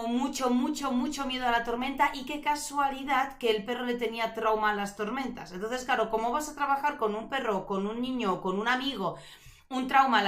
mucho miedo a la tormenta y qué casualidad que el perro le tenía trauma a las tormentas. Entonces, claro, ¿cómo vas a trabajar con un perro, con un niño, con un amigo, un trauma a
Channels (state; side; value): identical; both; correlation 1.00